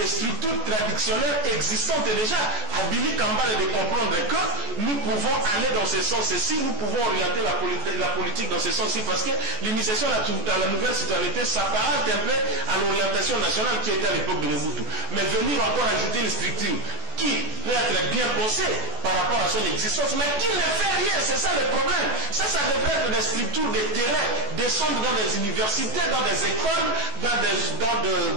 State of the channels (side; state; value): left; late; 14 ms